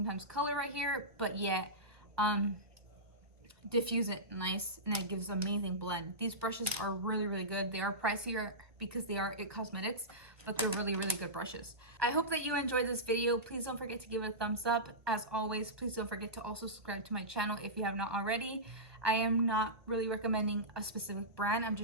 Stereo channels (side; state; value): left; late; 1.5 ms